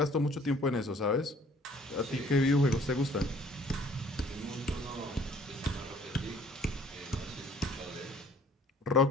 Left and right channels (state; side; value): normal; both; correlation 0.56